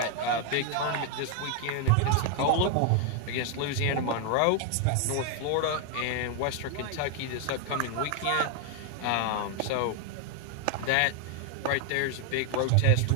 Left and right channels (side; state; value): both; different; correlation 0.01